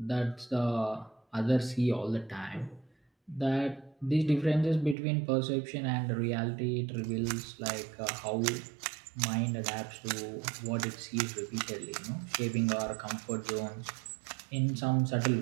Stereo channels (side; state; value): left; drops out; at 5.0 s